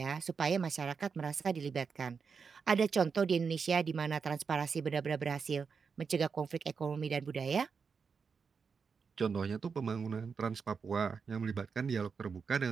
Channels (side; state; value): left; quieter; 5.6 dB